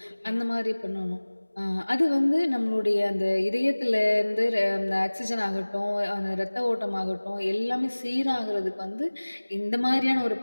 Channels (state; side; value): inverted; both; correlation -1.00